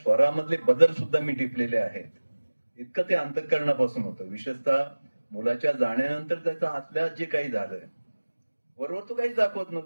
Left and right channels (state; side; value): inverted; both; correlation -1.00